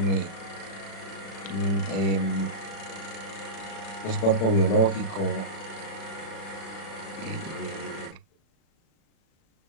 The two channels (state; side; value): late; right; 36 ms